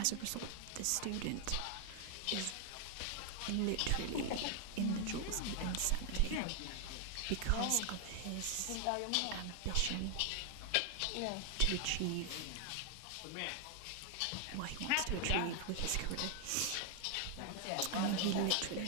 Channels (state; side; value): different; both; correlation 0.00